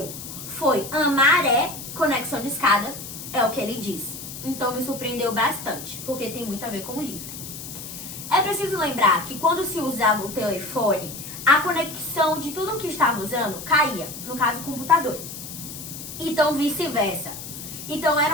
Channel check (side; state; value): left; noise; hiss, 10 dB below the sound